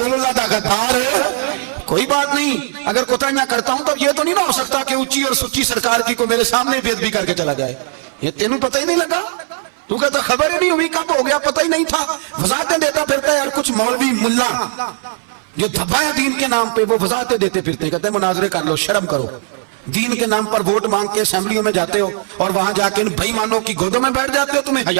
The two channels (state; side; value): silent; left; 57 dB below the other